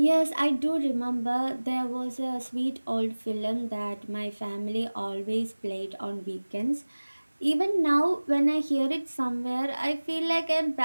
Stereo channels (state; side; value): inverted; both; correlation -1.00